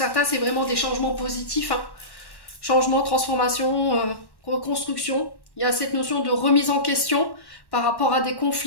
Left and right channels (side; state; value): right; late; 1.1 ms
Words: c'est vraiment des changements positifs, hein. Changement, transformation, reconstruction. Il y a cette notion de remise en question par rapport à des